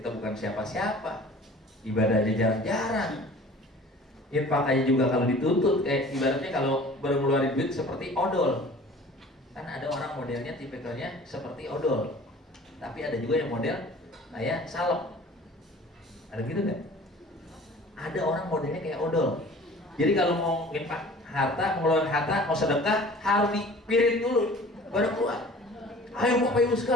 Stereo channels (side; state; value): both; normal; correlation 0.46